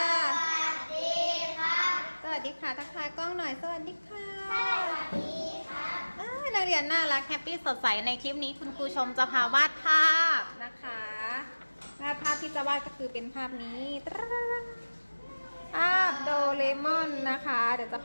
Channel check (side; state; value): both; inverted; correlation -1.00